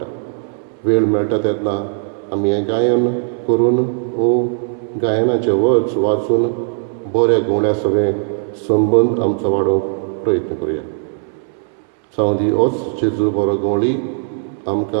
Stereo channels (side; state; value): left; silent; 67 dB below the other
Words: वेळ मेळटा तेन्ना आमी हें गायन करून वो गायनाचे वर्ड्स वाचून बऱ्या गवण्या सगळें संबंद आमचो वाडोवंक प्रयत्न करुया सावंदी होच जेजू बरो गवळी